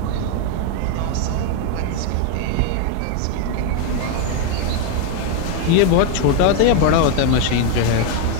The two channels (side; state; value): both; different; correlation 0.01